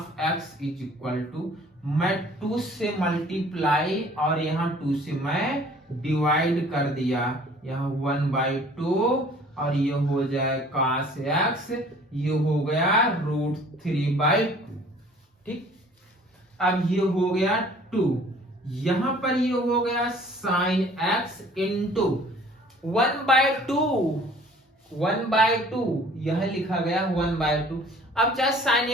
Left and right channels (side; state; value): both; normal; correlation 0.52